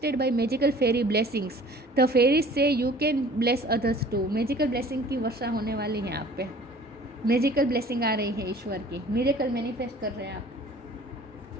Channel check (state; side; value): normal; both; correlation 0.49